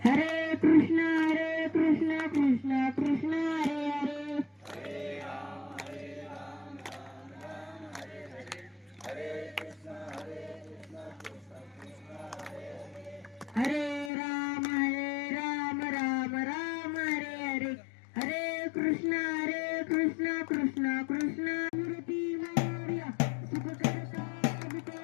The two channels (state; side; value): drops out; right; at 14.1 s